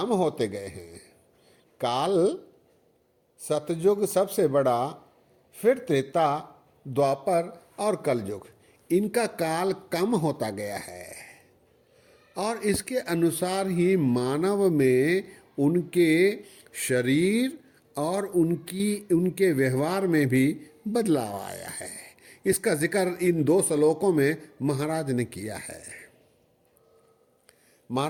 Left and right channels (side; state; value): both; identical; correlation 1.00